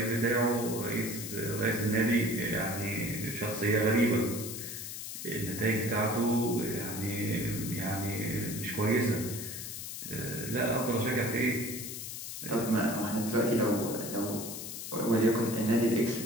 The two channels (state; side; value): noise; left; hiss, 7 dB below the sound